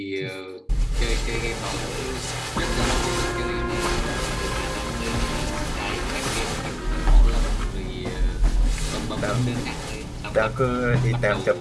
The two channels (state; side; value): identical; both; correlation 1.00